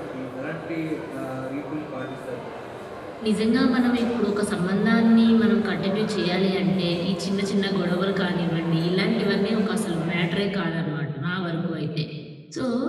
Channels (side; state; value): both; identical; correlation 1.00